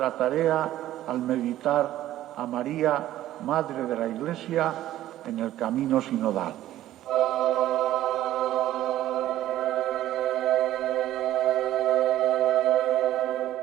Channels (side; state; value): left; quieter; 13.7 dB